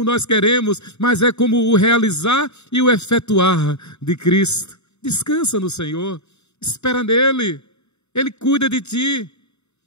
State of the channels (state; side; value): late; right; 0.81 ms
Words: nós queremos, mas é como o realizar e o efetuar de Cristo. Descansa no Senhor, espera nele, Ele cuida de ti.